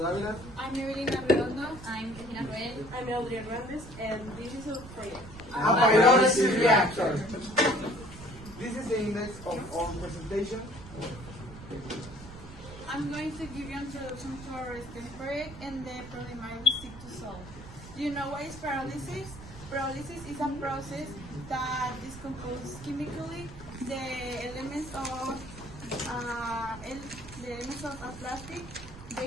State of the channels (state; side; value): noise; right; rumble, 15 dB below the sound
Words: I'm Evelina Redondo. I'm Regina Roel. I'm Eldria Grandes, and this is our project. A pyrolysis reactor. This is the index of our presentation. I'm going to give you an introduction to our study project and the problem I will seek to solve. Do you know what is pyrolysis? Pyrolysis is a process that decomposes chemically the elements of a plastic